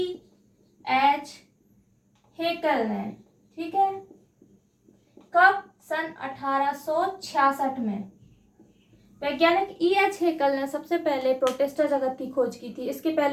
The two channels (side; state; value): both; identical; correlation 1.00